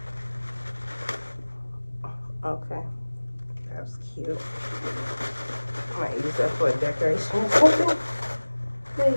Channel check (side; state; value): both; inverted; correlation -1.00